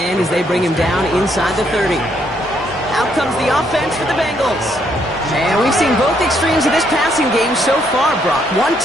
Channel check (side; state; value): both; normal; correlation 0.72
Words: as they bring him down inside the 30. Out comes the offense for the Bengals. And we've seen both extremes of this passing game so far, Brock. One